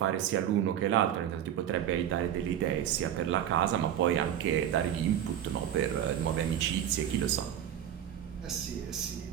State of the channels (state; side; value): quieter; left; 10.3 dB